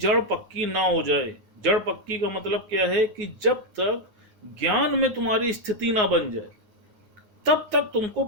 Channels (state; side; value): late; left; 9.5 ms